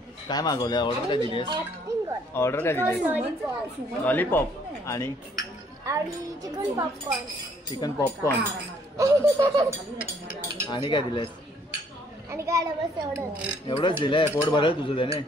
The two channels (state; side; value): normal; both; correlation 0.64